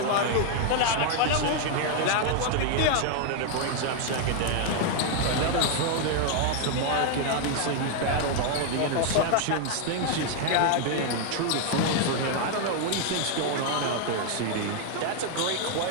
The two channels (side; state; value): both; different; correlation 0.00